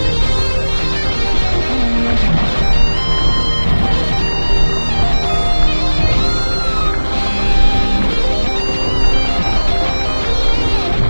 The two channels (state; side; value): inverted; both; correlation -1.00